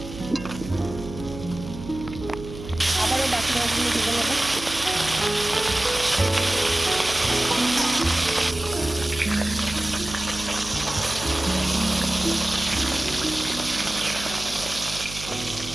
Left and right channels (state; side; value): noise; right; hum, 12 dB below the sound